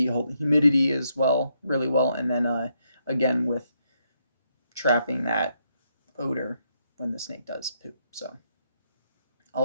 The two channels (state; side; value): inverted; both; correlation -0.77